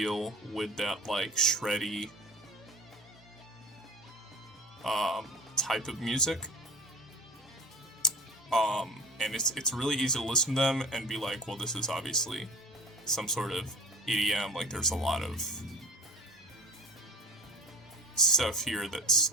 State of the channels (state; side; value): normal; both; correlation 0.39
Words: with that like shreddy type of music. And it's really easy to listen to them and be like, well, this is obviously some sort of EDM. Like, there's a lot of stuff here that's